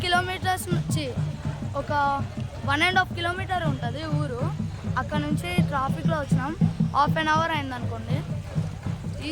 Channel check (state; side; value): identical; both; correlation 1.00